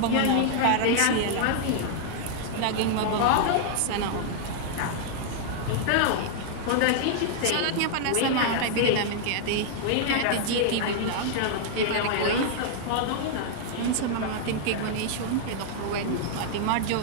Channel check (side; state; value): both; different; correlation -0.01